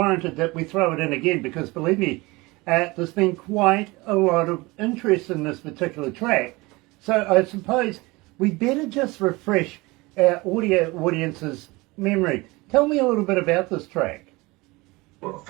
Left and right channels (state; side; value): quieter; left; 23.1 dB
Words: that we throw it in again because, believe me, there's been quite a lot of interest in this particular track. So I suppose we better just refresh our audio audience's memory. Tell me a little bit about this track. Well,